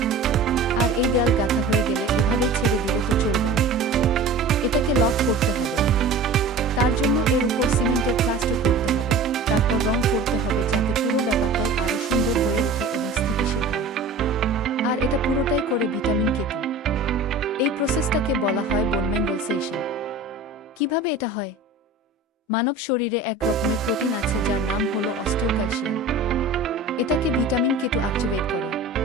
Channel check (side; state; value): left; quieter; 3.2 dB